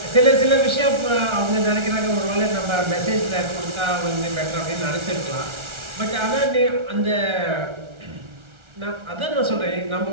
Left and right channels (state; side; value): late; left; 1.4 ms